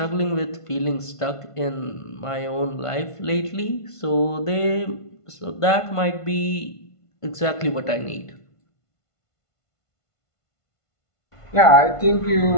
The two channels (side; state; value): right; late; 1.5 ms